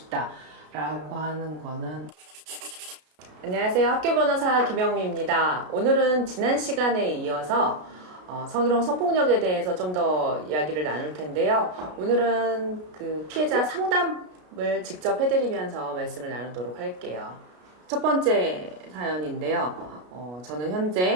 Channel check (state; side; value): late; left; 33 ms